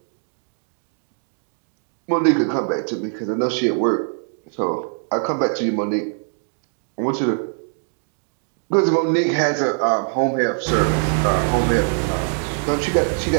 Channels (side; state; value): left; silent; 60 dB below the other